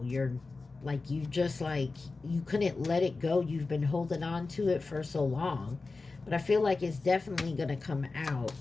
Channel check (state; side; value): quieter; right; 3.8 dB